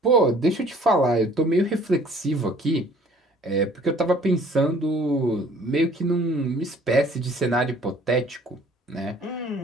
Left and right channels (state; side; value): normal; both; correlation 0.55